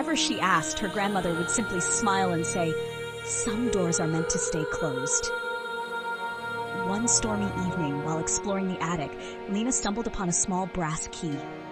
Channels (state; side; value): identical; both; correlation 1.00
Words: she asked, her grandmother would simply smile and say, "Some doors are meant to stay closed." One stormy evening, while exploring the attic, Lena stumbled upon a small brass key.